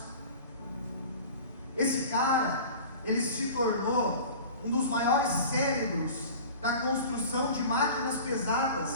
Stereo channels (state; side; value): inverted; both; correlation -0.39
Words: Esse cara, ele se tornou um dos maiores cérebros da construção de máquinas pesadas